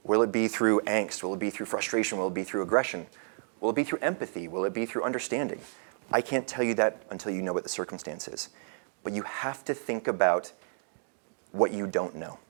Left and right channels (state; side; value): silent; left; digital silence